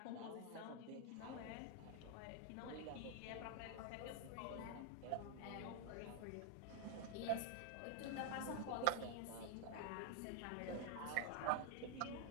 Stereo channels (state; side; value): different; both; correlation 0.00